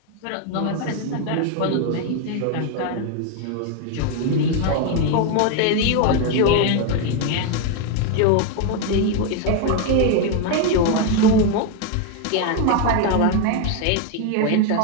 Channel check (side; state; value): both; different; correlation 0.01